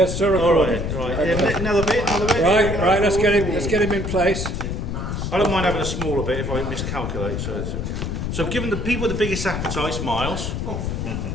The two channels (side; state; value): left; noise; rumble, 3 dB below the sound